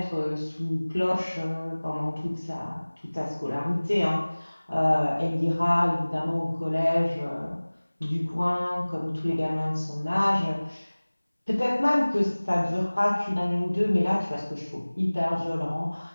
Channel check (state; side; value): inverted; both; correlation -1.00